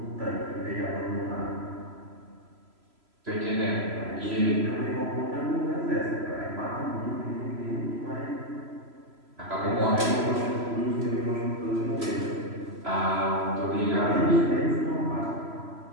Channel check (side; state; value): left; late; 3.0 ms